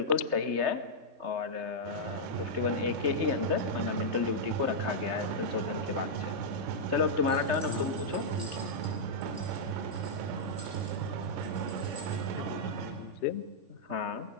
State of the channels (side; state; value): left; late; 3.3 ms